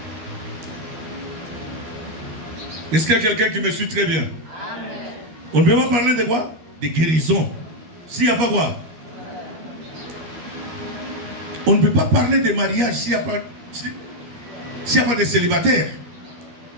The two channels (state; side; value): late; left; 13 ms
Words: Est-ce qu'il y a quelqu'un qui me suit très bien? Amen. On ne peut pas parler de quoi? De guérison s'il n'y a pas quoi? On ne peut pas parler de mariage s'il n'y a pas de célibataire.